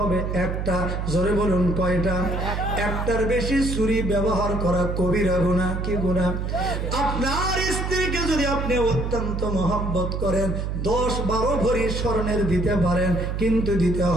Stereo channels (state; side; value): noise; right; hum, 2 dB below the sound